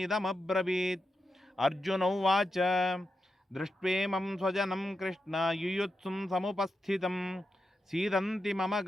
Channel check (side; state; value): both; normal; correlation 0.88